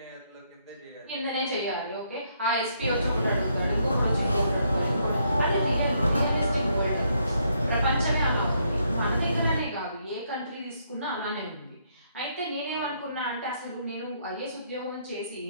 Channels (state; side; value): inverted; both; correlation -0.73